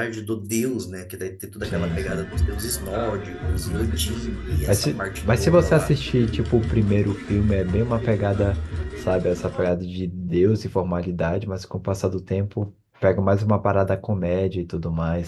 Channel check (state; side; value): identical; both; correlation 1.00